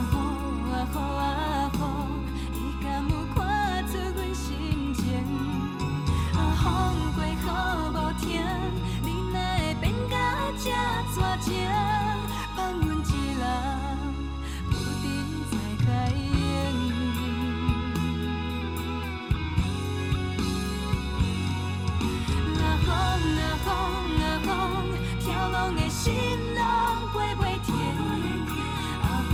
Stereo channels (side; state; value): both; identical; correlation 1.00